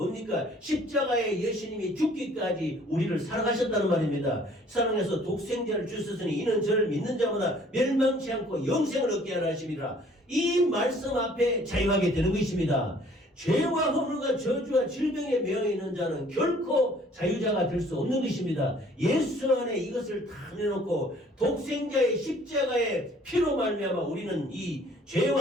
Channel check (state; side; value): normal; both; correlation 0.56